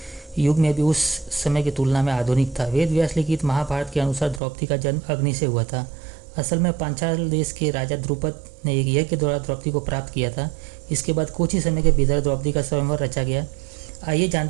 युग में भी उस समय की तुलना में आधुनिक था। वेद व्यास लिखित महाभारत के अनुसार द्रौपदी का जन्म अग्नि से हुआ था। असल में पांचाल देश के राजा द्रुपद ने एक यज्ञ के द्वारा द्रौपदी को प्राप्त किया था। इसके बाद कुछ ही समय के भीतर द्रौपदी का स्वयंवर रचा गया। आइए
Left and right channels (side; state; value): left; drops out; at 4.4 s